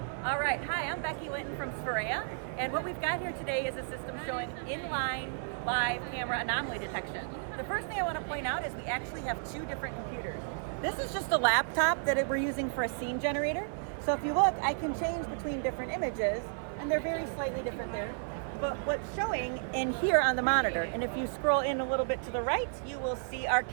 All right, hi, I'm Becky Linton from SPHEREA, and what we've got here today is a system showing inline live camera anomaly detection. The first thing I want to point out is we actually have two different computers. This is just a laptop that we're using for a scene generator. So if you look, I can change between different images, and they're very slightly different there. But what's showing in here on the monitor, and if you scroll in a little bit to the right, you will see our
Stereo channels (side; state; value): left; silent; 56 dB below the other